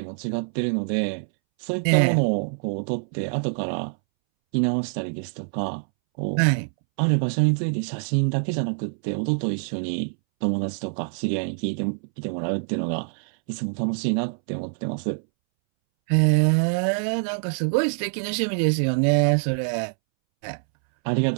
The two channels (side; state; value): left; silent; 62 dB below the other